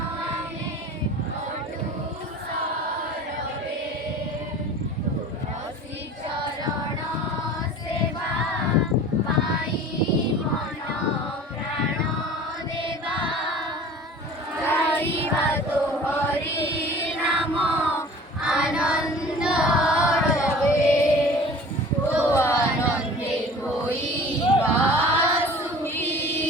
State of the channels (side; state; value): both; normal; correlation 0.43